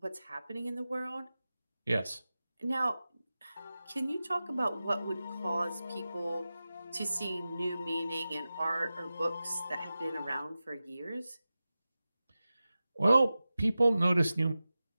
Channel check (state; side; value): inverted; both; correlation -0.95